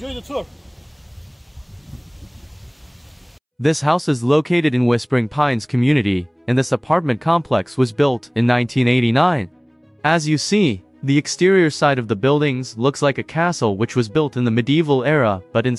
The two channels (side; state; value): both; identical; correlation 1.00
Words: the tour. This house is located in Whispering Pines community, and this apartment complex was built in 1989. As you see, the exterior side of the buildings looks like a castle which was built in the medieval era, but